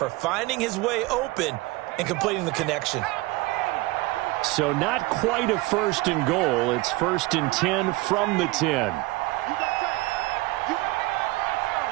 finding his way open and completing the connection. So not quite a 1st and goal. It's 1st and 10 from the 10.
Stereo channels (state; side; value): quieter; left; 20.9 dB